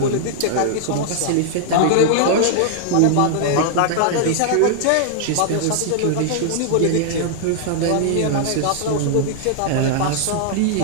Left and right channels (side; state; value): both; different; correlation -0.01